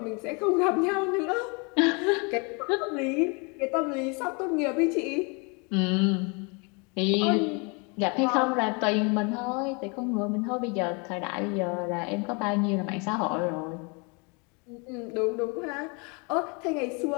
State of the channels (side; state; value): right; quieter; 32.1 dB